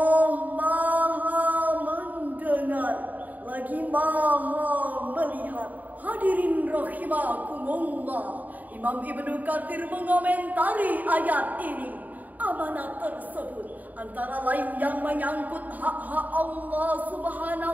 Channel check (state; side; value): late; left; 0.080 ms